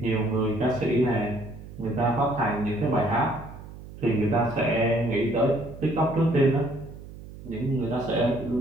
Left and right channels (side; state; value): right; noise; hum, 15 dB below the sound